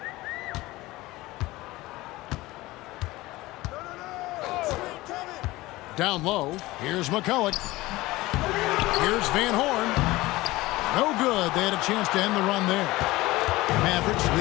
Down low. Here's McCulloch. Here's Van Horn. No good. They had a chance to end the run there. Mavericks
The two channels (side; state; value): right; quieter; 19.2 dB